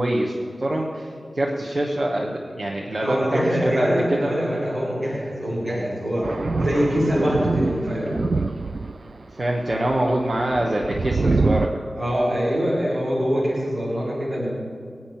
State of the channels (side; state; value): both; normal; correlation 0.95